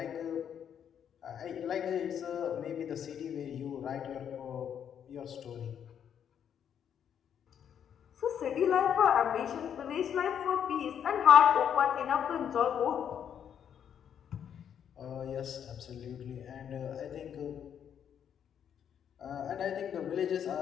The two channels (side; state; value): right; quieter; 8.7 dB